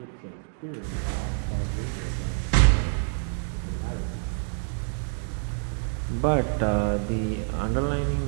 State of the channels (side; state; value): left; silent; digital silence